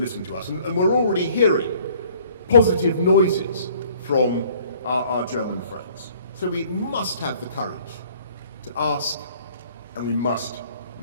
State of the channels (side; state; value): both; inverted; correlation -0.57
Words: to us. And we're already hearing positive noises from our German friends. So we must have the courage to ask, and we must